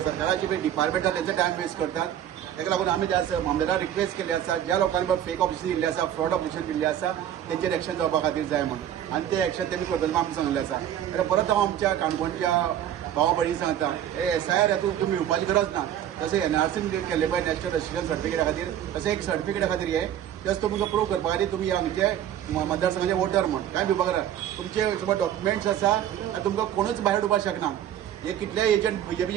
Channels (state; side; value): quieter; left; 10.7 dB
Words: पळय डिपार्टमेंट आसा तेंचो टायम वेस्ट करतात ताका लागून आमी त्या मामलेदार रिक्वेस्ट केली आसा ज्या लोकांनी फेक ऑपरेशन दिल्ले आसा फ्रॉड ऑपरेशन दिल्ले आसा तेंचेर एक्शन जावपा खातीर जाय म्हणून आनी ते एक्शन तेमी करतले आमी सांगले आसा आनी परत हांव आमच्या काणकोणच्या भावा भयणी सांगता हे एसआयआर हातूंत तुमी येवपाची गरज ना जशें एनआरसीन केल्ले पळय नॅशनल रजिस्ट्रेशन सर्टिफिकेटा खातीर तशें एक सर्टिफिकेटा खातीर हे जस्ट तुमकां प्रूव करपा खातीर तुमी हांगचे मतदारसंघाचे वोटर म्हण काय भिवपाक करा तुमचे समज डॉक्युमेंट्स आसा आनी तुमकां कोणूच भायर उडोवपाक शकना हे कितले एजंट